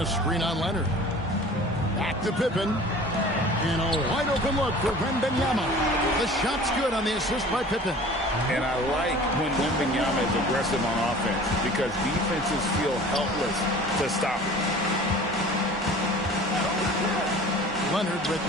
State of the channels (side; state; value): both; normal; correlation 0.44